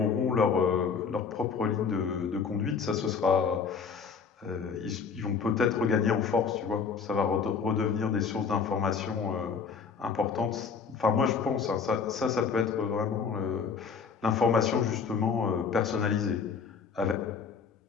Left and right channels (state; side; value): quieter; right; 5.8 dB